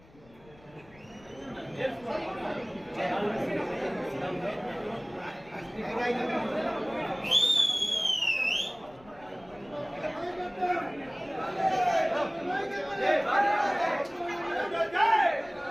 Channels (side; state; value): left; noise; rumble, 26 dB below the sound